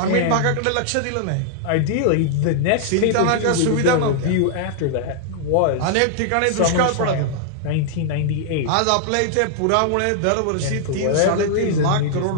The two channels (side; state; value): both; different; correlation -0.01